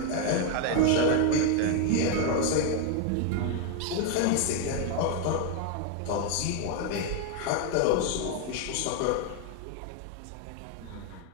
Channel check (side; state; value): both; different; correlation 0.01